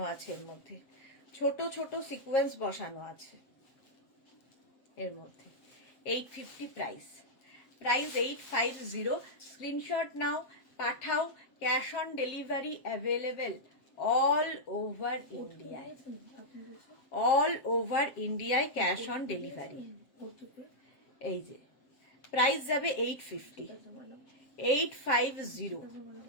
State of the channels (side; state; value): right; late; 7.7 ms